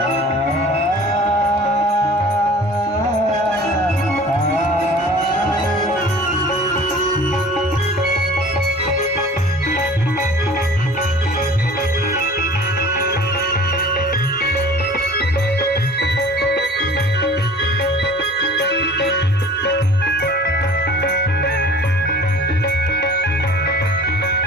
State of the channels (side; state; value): both; normal; correlation 0.45